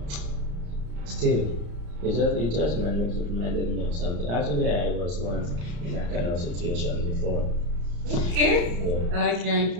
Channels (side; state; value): left; late; 34 ms